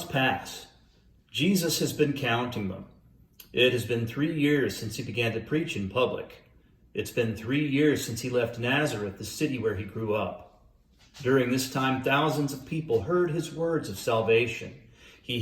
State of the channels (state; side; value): identical; both; correlation 1.00